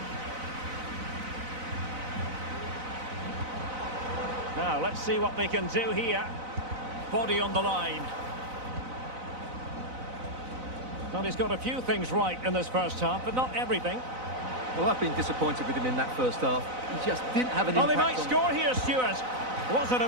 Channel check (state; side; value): late; left; 4.0 ms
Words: Now, let's see what they can do here. Body on the line. Well, he's got a few things right in this first half, but not everything. Well, I've been disappointed with him in that first half. He just didn't have an Oh, impact. they might score here, Stuart. Was an